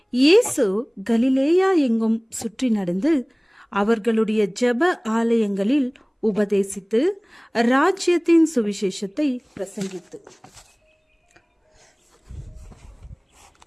இயேசு கலிலேயா எங்கும் சுற்றி நடந்து அவர்களுடைய ஜெப ஆலயங்களில் உபதேசித்து ராஜ்யத்தின் சுவிசேஷத்தை பிரசங்கித்து.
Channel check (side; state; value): both; identical; correlation 1.00